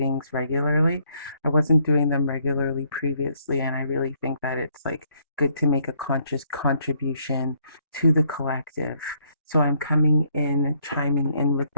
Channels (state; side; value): inverted; both; correlation -0.69